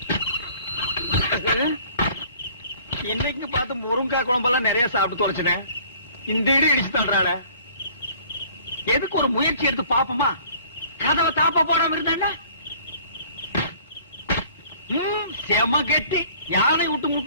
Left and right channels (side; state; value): both; inverted; correlation -0.53